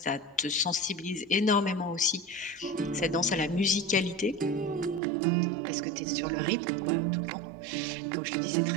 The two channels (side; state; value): left; drops out; at 5.0 s